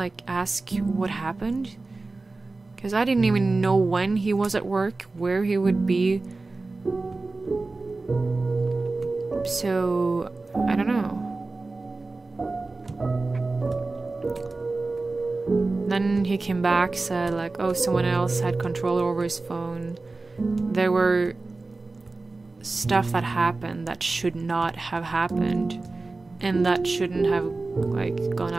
ask what happened? Because I didn't even know when he was at work, where he would be. So, I don't know. Then he came back, said, like, oh, someone else had control over his phone. There were stuff that happened that should not have happened, and that shouldn't have, like, gone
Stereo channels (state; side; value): quieter; left; 3.5 dB